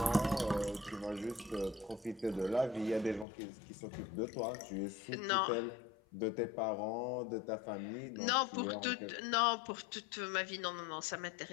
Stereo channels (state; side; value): drops out; right; at 3.2 s